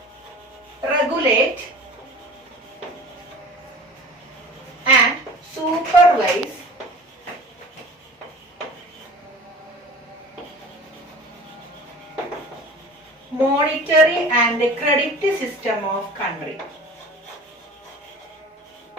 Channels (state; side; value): normal; both; correlation 0.41